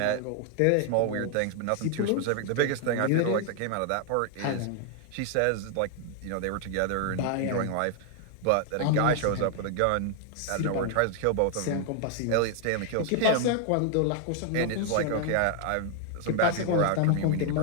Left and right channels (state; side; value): different; both; correlation 0.00